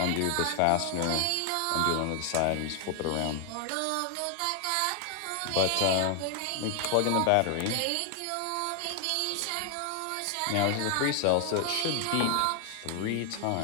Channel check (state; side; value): different; both; correlation 0.00